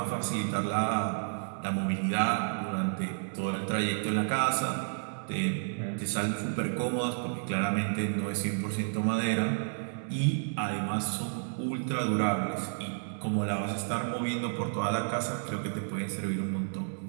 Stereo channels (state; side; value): silent; left; 57 dB below the other